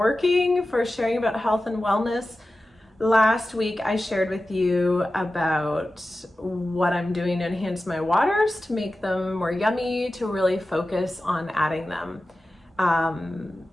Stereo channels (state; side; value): normal; both; correlation 0.94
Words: for sharing about health and wellness. Last week I shared with you about what I'm doing to enhance my waters, to make them more yummy, to really focus on adding them. Adding